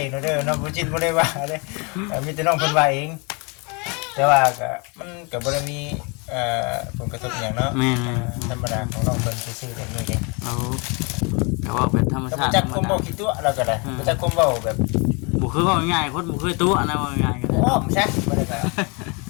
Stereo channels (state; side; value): quieter; right; 31.3 dB